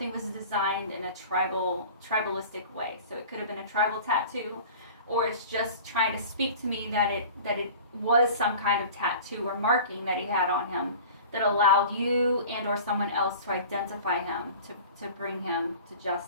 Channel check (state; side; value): inverted; both; correlation -0.41